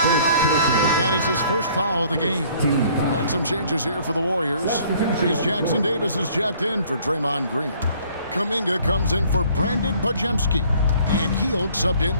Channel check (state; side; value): inverted; both; correlation -0.57